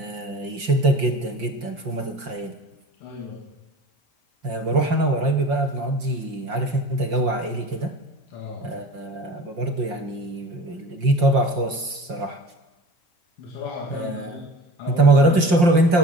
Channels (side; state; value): left; late; 5.7 ms